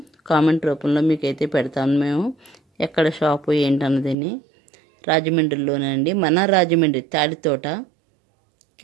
కామెంట్ రూపంలో మీకైతే పెడతాను మేము ఎక్కడ షాపు ఏంటన్నదని. రాజమండ్రిలోనే అండి, మన రాజమండ్రి తాడితోట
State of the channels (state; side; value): drops out; left; at 4.2 s